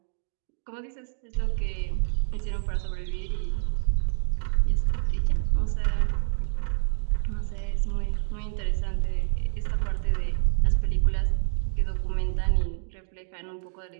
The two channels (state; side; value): silent; left; digital silence